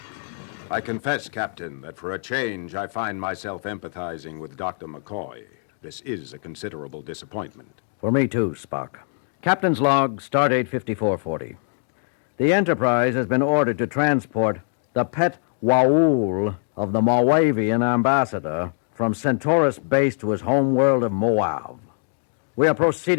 I confess, Captain, that for a change, I find myself empathizing with Dr. McCoy. This is a considerable disappointment. For me, too, Spock. Captain's log, stardate 5440. The Enterprise has been ordered to transport the pet waul of the Moauvian ambassador from Centaurus base to his home world of Moauv. We are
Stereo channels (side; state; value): right; silent; digital silence